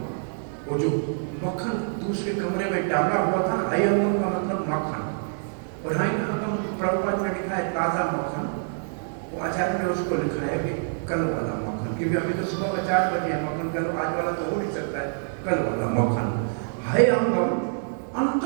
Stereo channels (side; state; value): left; silent; digital silence